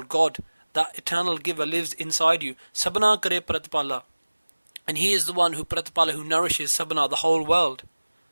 God, that eternal giver lives inside you. Sabana kare pratipala. And he is the one who pratipala, who nourishes sabana, the whole world.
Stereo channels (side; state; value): both; inverted; correlation -1.00